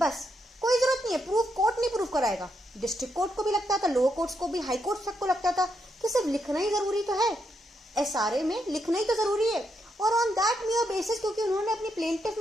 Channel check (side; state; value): both; normal; correlation 0.80